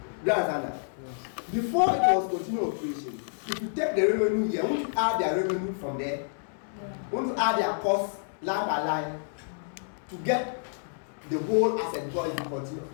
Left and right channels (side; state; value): right; silent; digital silence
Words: Do you understand that? Before it was continued operation, if you take the revenue here, won't you add their revenue from there? Won't you add their costs line by line to get the whole asset before it